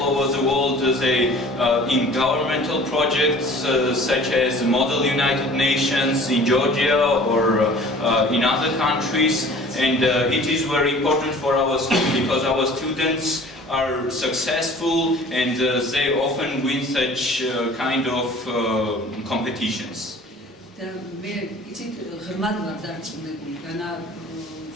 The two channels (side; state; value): both; normal; correlation 0.47